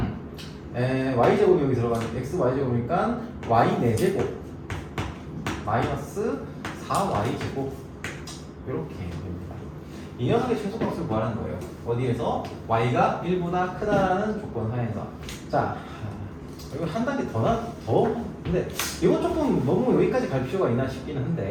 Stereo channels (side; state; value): both; identical; correlation 1.00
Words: y제곱이 여기 들어가는 xy제곱이니까 y 4제곱 마이너스 4y제곱 이렇게 됩니다. 이 녀석의 최소값을 구하는 거예요. 어디에서? y가 1보다 크다라는 조건 하에서. 자, 이거 한 단계 더 근데 이거 조금 너무 여기까지 갈 필요가 있나 싶기는